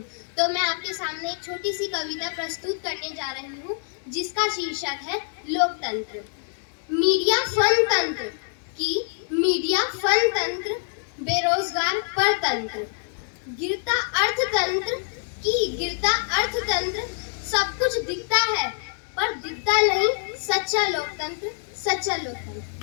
तो मैं आपके सामने एक छोटी सी कविता प्रस्तुत करने जा रही हूँ जिसका शीर्षक है लोकतंत्र। मीडिया फन तंत्र की मीडिया फन तंत्र, बेरोजगार परतंत्र, गिरता अर्थतंत्र की गिरता अर्थतंत्र। सब कुछ दिखता है पर दिखता नहीं सच्चा लोकतंत्र, सच्चा लोकतंत्र।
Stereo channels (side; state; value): right; silent; 62 dB below the other